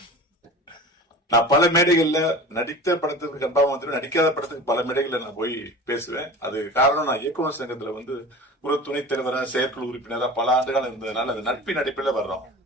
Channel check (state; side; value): normal; both; correlation 0.36